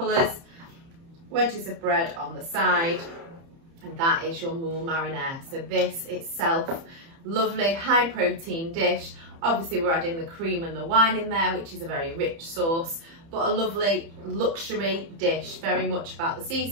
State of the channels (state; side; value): late; left; 30 ms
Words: Wedges of bread on the side, and that is your Moules Marinière. So this itself, lovely high protein dish. Obviously we're adding the cream and the wine in there, which is a very rich sauce, but a lovely luxury dish, very much about the